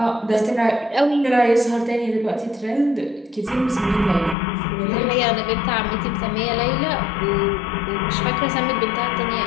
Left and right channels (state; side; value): drops out; right; at 4.4 s